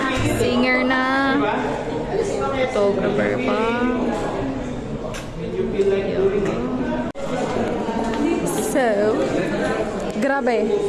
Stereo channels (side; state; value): both; identical; correlation 1.00